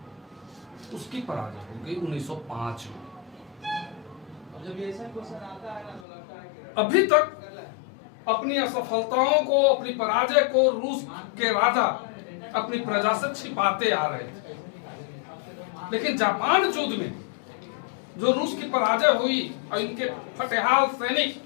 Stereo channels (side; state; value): right; drops out; at 6.1 s